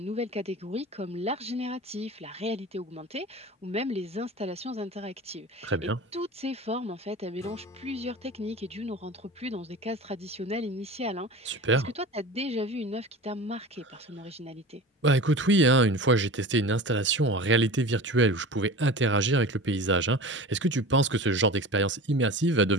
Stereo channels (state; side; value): normal; both; correlation 0.34